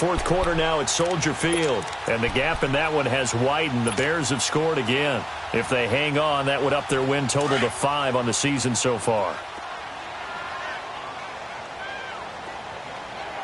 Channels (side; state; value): both; identical; correlation 1.00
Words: quarter now at Soldier Field. And the gap in that one has widened. The Bears have scored again. If they hang on, that would up their win total to 5 on the season so far.